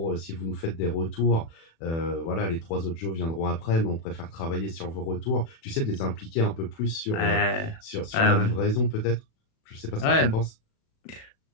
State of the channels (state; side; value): late; right; 36 ms